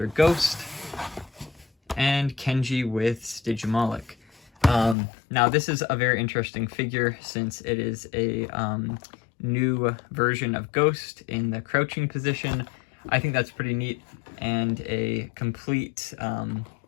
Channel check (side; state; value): right; drops out; at 5.0 s